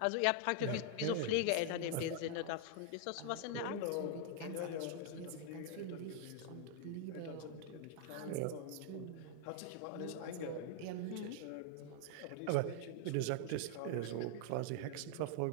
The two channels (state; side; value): different; both; correlation 0.00